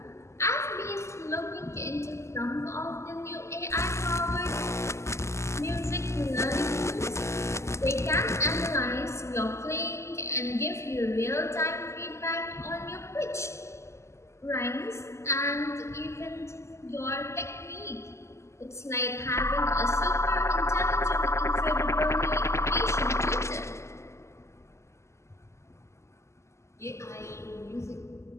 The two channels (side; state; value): right; late; 0.13 ms